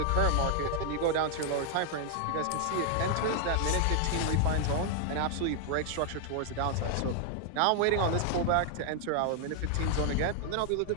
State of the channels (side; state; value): both; different; correlation 0.00